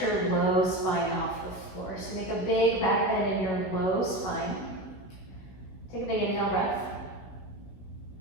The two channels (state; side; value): late; right; 16 ms